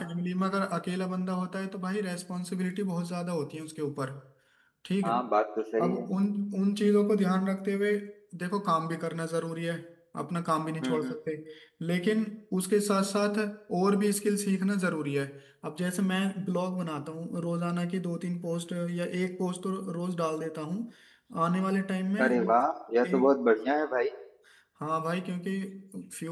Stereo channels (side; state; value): both; identical; correlation 1.00